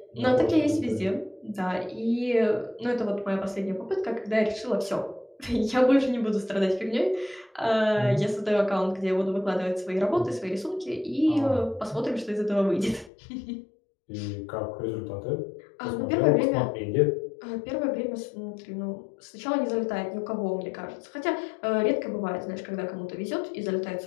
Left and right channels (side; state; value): right; drops out; at 13.1 s